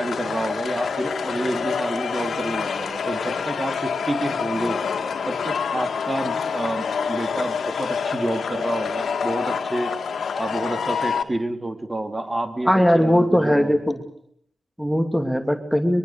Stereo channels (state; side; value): normal; both; correlation 0.92